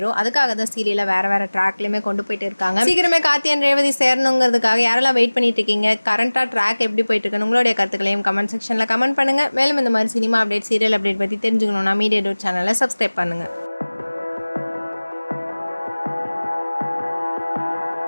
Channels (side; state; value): both; inverted; correlation -1.00